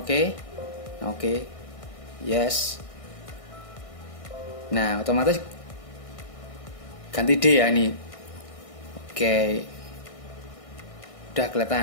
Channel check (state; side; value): late; right; 1.6 ms